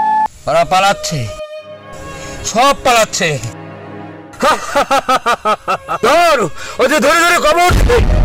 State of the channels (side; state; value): both; identical; correlation 1.00